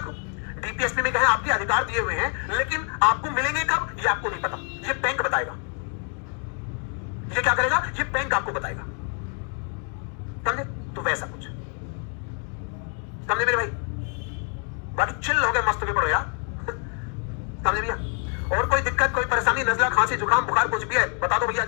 को? डीपीएसपी में कहे आपके अधिकार दिए हुए हैं, लेकिन आपको मिलेंगे कब ये आपको नहीं पता, ये बैंक बताएगा। ये क्या करेगा? ये बैंक आपको बताएगा। समझे? तो वैसा कुछ समझे मेरे भाई? बाकी चिल हो गए, मस्त के पड़ो यार। समझे भैया? और कोई दिक्कत, कोई परेशानी, नजला, खांसी, जुकाम, बुखार कुछ भी है बता दो भैया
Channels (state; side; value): quieter; right; 39.9 dB